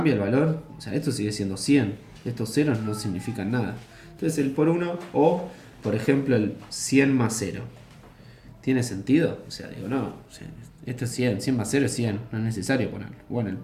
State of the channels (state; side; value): identical; both; correlation 1.00